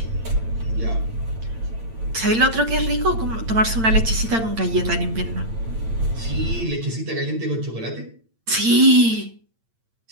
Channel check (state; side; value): late; left; 8.9 ms